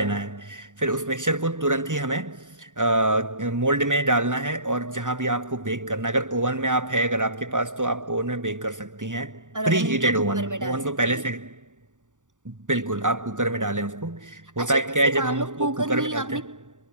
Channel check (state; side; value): late; left; 0.87 ms